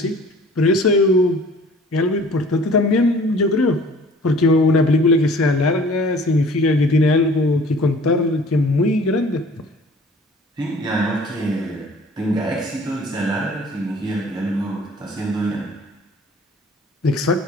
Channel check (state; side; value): normal; both; correlation 0.49